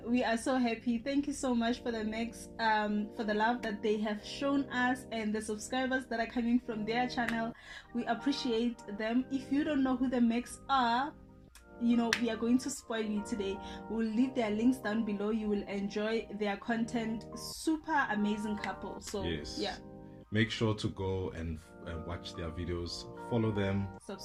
we are so happy. Thank you so much for the Makhs, for the love that they have shown us and the subscribers that are coming from their channel. We appreciate them. If you don't know who the Makhs are, you know, we are going to spoil you today. We'll leave their links down below. You will enjoy their content. Super amazing couple. So yes, yeah, make sure to go and watch their videos, follow them,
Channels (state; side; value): identical; both; correlation 1.00